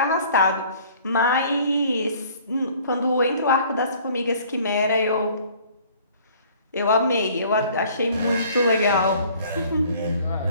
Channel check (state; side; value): inverted; both; correlation -0.54